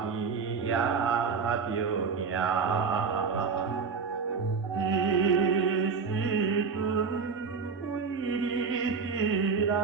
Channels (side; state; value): left; quieter; 5.3 dB